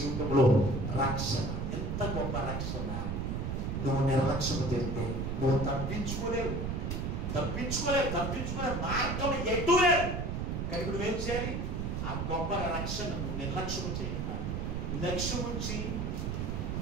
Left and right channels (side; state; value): right; noise; rumble, 2 dB below the sound